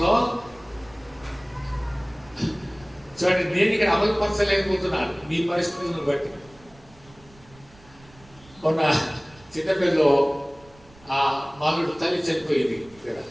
చూడండి, నేను ఇక్కడ అమలుపరచలేకపోతున్నాను మీ పరిస్థితులను బట్టి. మొన్న చిన్నపిల్లలో ఆ మాలుడు తల్లి చనిపోయింది.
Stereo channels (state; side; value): noise; right; rumble, 26 dB below the sound